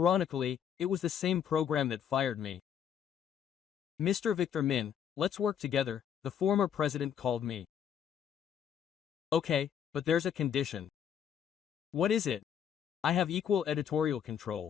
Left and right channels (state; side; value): quieter; right; 8.7 dB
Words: it was the same program that fired me. Mr. Victor Min, let's work together, the former president called me. Okay, but there's a condition. What is it? I have equal editorial